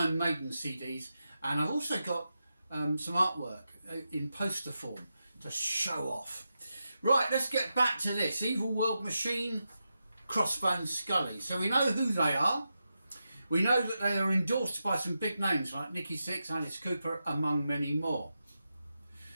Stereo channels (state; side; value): inverted; both; correlation -0.89